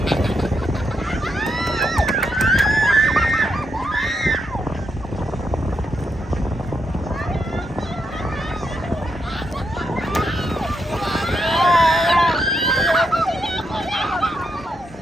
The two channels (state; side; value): normal; both; correlation 0.81